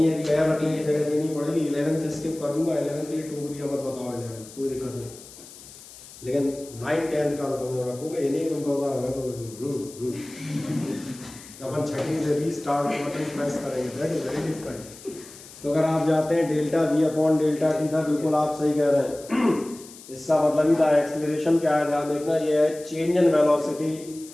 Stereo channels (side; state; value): left; noise; hiss, 18 dB below the sound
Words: एक पैर रखने की जगह देनी पड़ेगी। 11th स्किप कर दूंगा, 11th के लिए टोक दिया, मत बताओ 11th, कोई दिक्कत नहीं, लेकिन 9th 10th का तो रखोगे, ये नहीं तुम कहोगे हमें तो अपन छठी से रीस्टार्ट बटन प्रेस करेंगे, दैट इज वेरी डिफरेंट। तो अगर आप जाते हैं delta v upon delta T था, बिल्कुल आप सही कह रहे हैं, इसका मतलब ही था एक्सीलरेशन क्या है, ध्यान देखना, ये है change in velocity